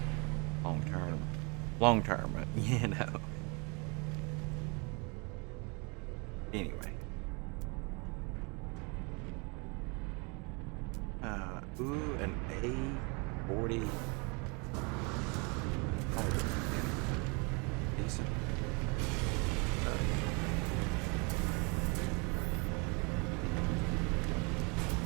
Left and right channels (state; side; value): quieter; left; 31.5 dB